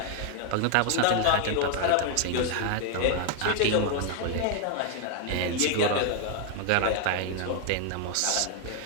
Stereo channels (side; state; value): both; different; correlation 0.00